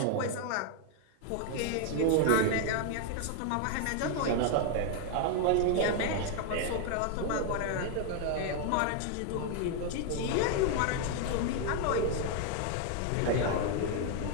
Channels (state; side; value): different; both; correlation 0.00